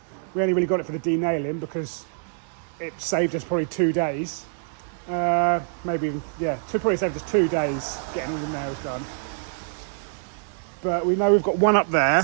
We only really got it for the denailing because it saved us probably 2 days. Maybe even, probably saved us 2 days getting all the nails done. But we know we've got one up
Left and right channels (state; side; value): silent; left; digital silence